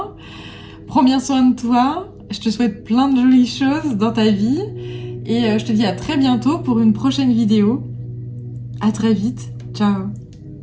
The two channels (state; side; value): identical; both; correlation 1.00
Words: Prends bien soin de toi. Je te souhaite plein de jolies choses dans ta vie. Et je te dis à très bientôt pour une prochaine vidéo. À très vite. Ciao.